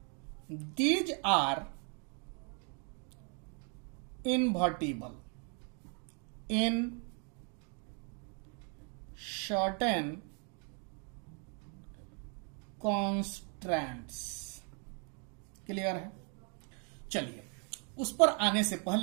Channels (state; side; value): quieter; left; 38.4 dB